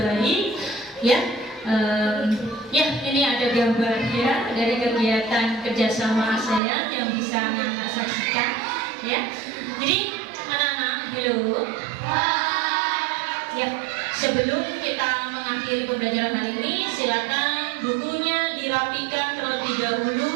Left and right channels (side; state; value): left; drops out; at 6.6 s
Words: Ya, ya, ini ada gambar ya dari kegiatan kerjasama ASEAN yang bisa anak-anak saksikan. Ya, jadi anak-anak, halo. Ya, sebelum kita mengakhiri pembelajaran hari ini, silakan bukunya dirapikan terlebih dahulu,